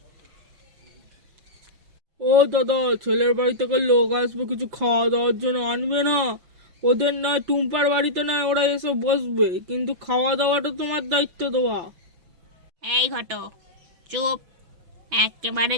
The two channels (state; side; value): late; left; 5.9 ms